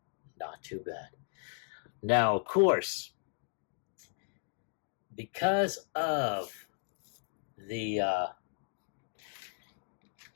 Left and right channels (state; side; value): silent; right; digital silence